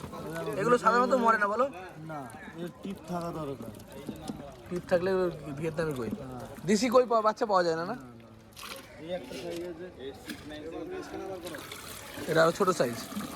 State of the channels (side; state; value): both; identical; correlation 1.00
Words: এগুলো সাধারণত মরে না বলো? না, এর টিপ থাকা দরকার। টিপ থাকলে ভিয়েতনামি কই। দেশি কই বাচ্চা পাওয়া যায় না? না, এই একটা সাইজ আছে, এটা আরো ছোট সাইজ।